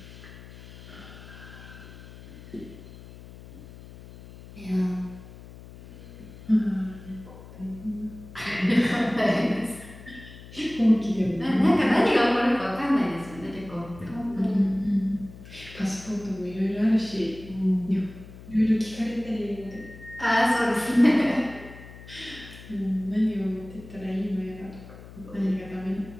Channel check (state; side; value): noise; left; hum, 17 dB below the sound